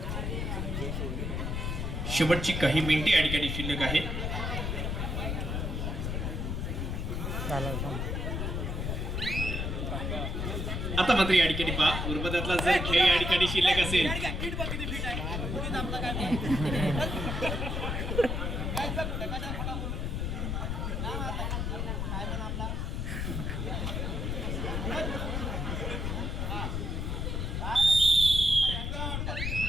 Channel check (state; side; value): noise; left; rumble, 1 dB below the sound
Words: शेवटची काही मिनिटे या ठिकाणी शिल्लक आहे. आता मात्र या ठिकाणी पहा, उर्वरातला जर खेळ या ठिकाणी शिल्लक असेल